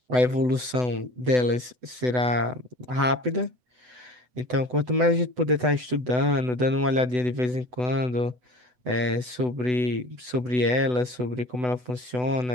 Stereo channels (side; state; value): left; late; 8.0 ms